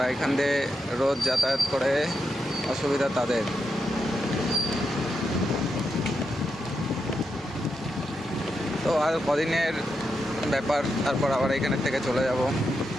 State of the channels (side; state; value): both; normal; correlation 0.85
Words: এখান দিয়ে রোজ যাতায়াত করে অসুবিধা তাদের। তো আর কদিনের ব্যাপার, তারপর আবার এখানের থেকে চলে যাব।